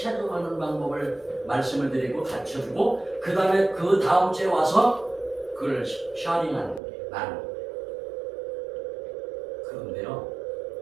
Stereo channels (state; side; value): drops out; left; at 6.8 s